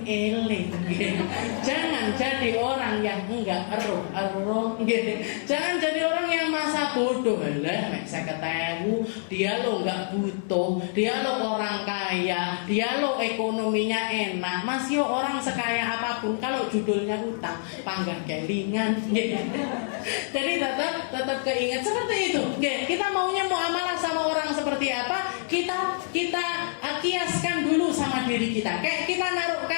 eleng. Jangan jadi orang yang enggak ero. Jangan jadi orang yang masa bodoh. Lah nek 50.000 dia lo enggak butuh, dia lo orang kaya, dia lo ekonominya enak, masih orang sekaya apapun kalau judulnya utang, panggah kelingan. Jadi tetap keinget seperti itu. Kita maunya muamalah sama orang seperti apa? Kita kiaskan dulu sama diri kita. Kayak kita naruh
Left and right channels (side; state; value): right; silent; digital silence